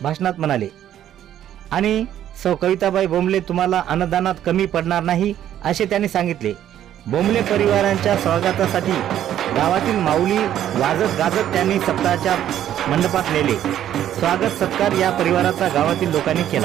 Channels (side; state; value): left; quieter; 11.2 dB